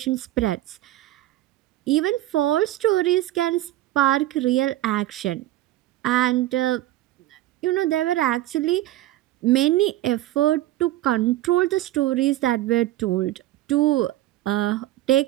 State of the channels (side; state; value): left; quieter; 15.2 dB